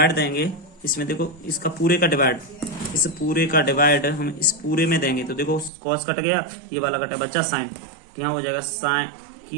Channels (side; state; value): left; drops out; at 5.7 s